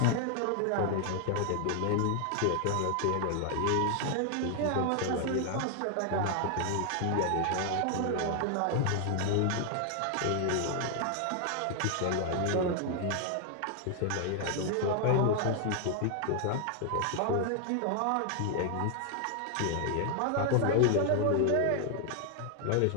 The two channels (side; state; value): both; different; correlation 0.00